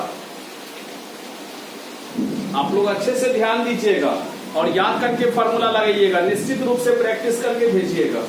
आप लोग अच्छे से ध्यान दीजिएगा और याद करके फॉर्मूला लगाइएगा, निश्चित रूप से प्रैक्टिस करके भेजिएगा।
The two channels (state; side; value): identical; both; correlation 1.00